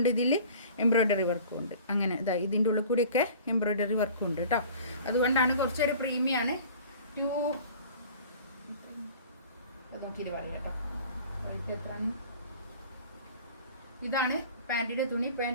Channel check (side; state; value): both; inverted; correlation -0.45